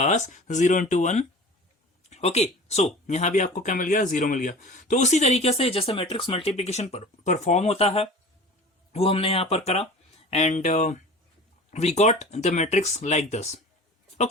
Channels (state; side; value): normal; both; correlation 0.40